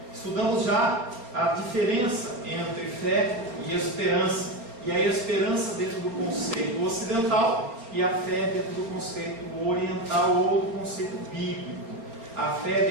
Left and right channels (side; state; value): left; late; 4.3 ms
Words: Estudamos já a diferença entre fé e esperança, e a esperança dentro do conceito ocidental e a fé dentro do conceito oriental ou do conceito bíblico. A fé